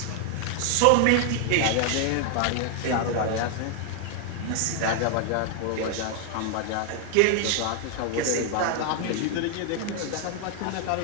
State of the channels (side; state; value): both; different; correlation 0.00